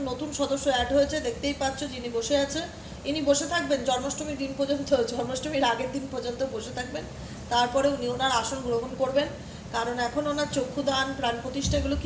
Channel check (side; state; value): both; identical; correlation 1.00